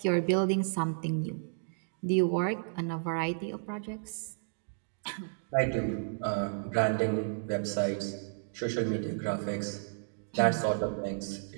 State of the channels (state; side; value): silent; left; digital silence